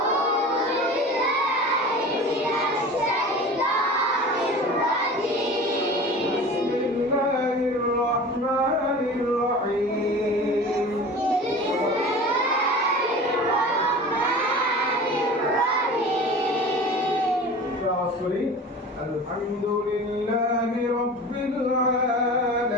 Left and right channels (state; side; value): normal; both; correlation 0.37